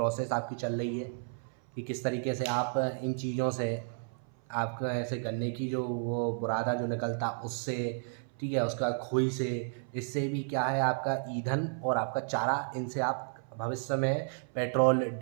आपकी चल रही है कि किस तरीके से आप इन चीज़ों से आपका ऐसे गन्ने की जो वो बुरादा जो निकलता उससे, ठीक है, उसका खोई से, इससे भी क्या है आपका ईंधन और आपका चारा, इनसे आप भविष्य में पेट्रोल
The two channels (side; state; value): left; silent; 56 dB below the other